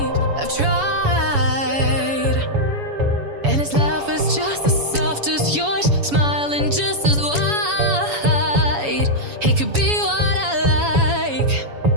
I've tried, and his laugh is just as soft as yours, smiling just as wide. He could be what I like,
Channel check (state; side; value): late; left; 7.1 ms